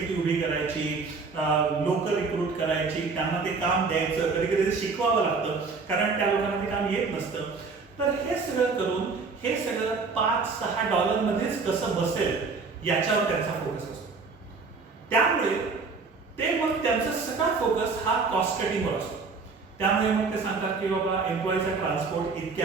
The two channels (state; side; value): quieter; left; 4.5 dB